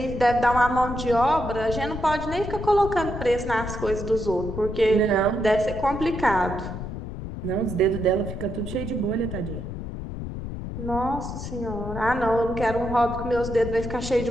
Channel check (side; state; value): left; noise; rumble, 7 dB below the sound